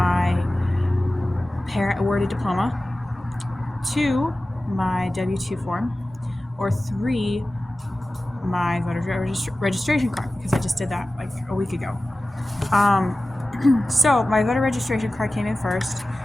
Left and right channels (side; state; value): both; normal; correlation 0.96